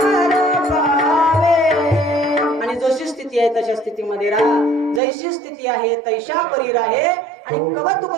आणि जशी स्थिती आहे तशा स्थितीमध्ये राहा जैशी स्थिती आहे तैशा परी राहे आणि कवतुक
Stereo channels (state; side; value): drops out; left; at 5.0 s